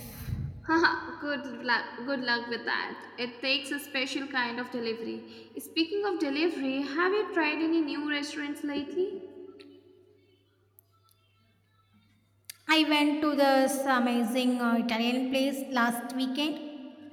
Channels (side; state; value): both; identical; correlation 1.00